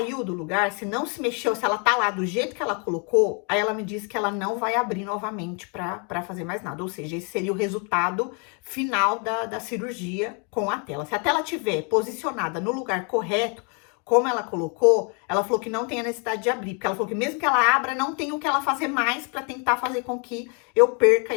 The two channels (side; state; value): right; quieter; 36.4 dB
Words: do lugar, se não se mexeu, se ela tá lá do jeito que ela colocou, aí ela me disse que ela não vai abrir novamente para fazer mais nada. Ou seja, esse seria o resultado final da cirurgia com a tela. Se a tela tiver posicionada no lugar correto, como ela colocou, ela falou que não tem a necessidade de abrir, porque ela falou que mesmo que ela abra, não tem o que ela fazer mais para tentar fazer com que eu perca